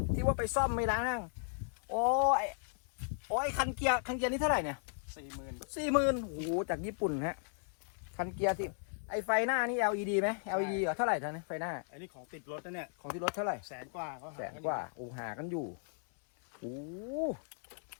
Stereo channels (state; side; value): silent; right; 54 dB below the other